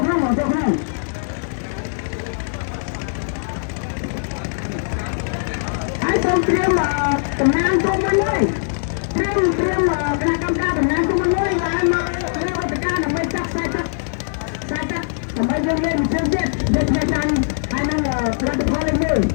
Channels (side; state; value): right; silent; digital silence